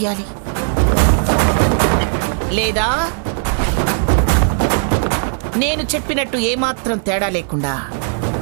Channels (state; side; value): silent; left; digital silence